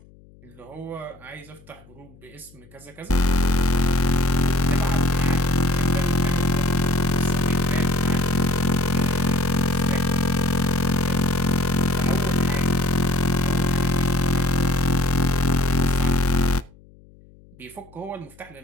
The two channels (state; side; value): noise; left; hum, 26 dB below the sound